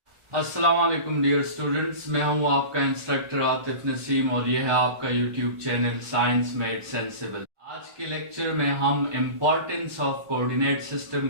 अस्सलाम वालेकुम dear students, मैं हूं आपका इंस्ट्रक्टर आतिफ नसीम और यह है आपका YouTube channel science made sensible. आज के लेक्चर में हम इम्पोर्टेंस ऑफ कोऑर्डिनेट सिस्टम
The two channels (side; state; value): left; late; 1.4 ms